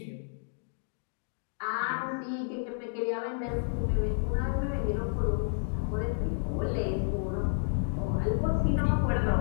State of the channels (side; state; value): right; silent; digital silence